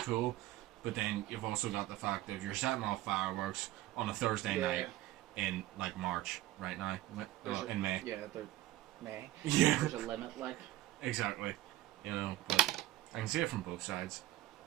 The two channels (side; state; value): left; quieter; 16.3 dB